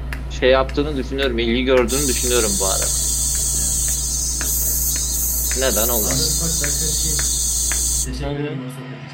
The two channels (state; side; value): identical; both; correlation 1.00